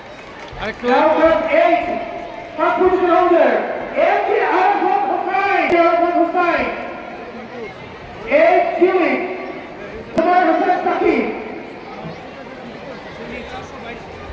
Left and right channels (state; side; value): identical; both; correlation 1.00